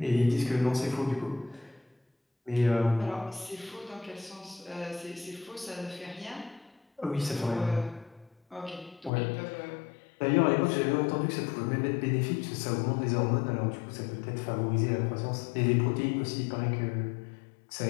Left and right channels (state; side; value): drops out; right; at 9.1 s